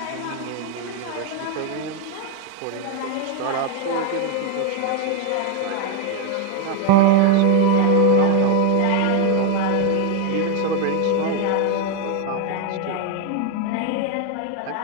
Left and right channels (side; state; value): both; different; correlation 0.01